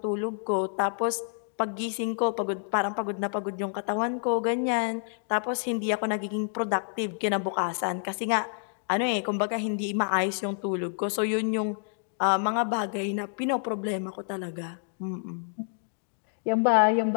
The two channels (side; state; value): right; silent; digital silence